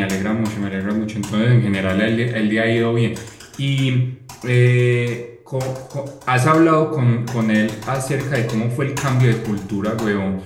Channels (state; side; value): identical; both; correlation 1.00